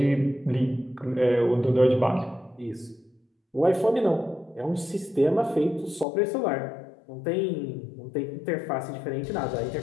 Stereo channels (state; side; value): drops out; right; at 6.1 s